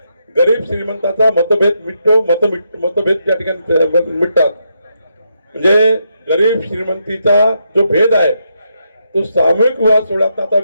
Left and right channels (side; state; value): both; inverted; correlation -0.80